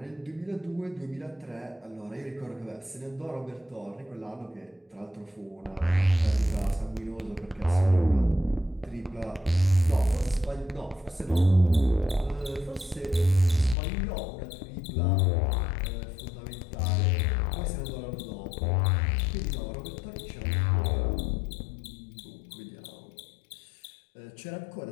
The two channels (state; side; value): drops out; right; at 13.8 s